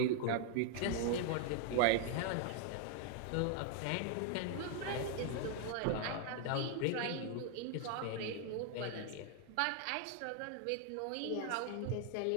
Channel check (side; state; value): both; different; correlation 0.00